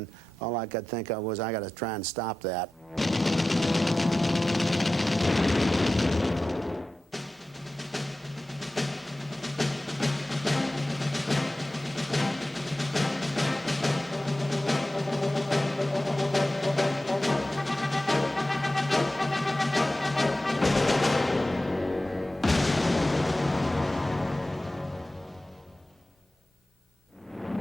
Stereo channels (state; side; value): normal; both; correlation 0.94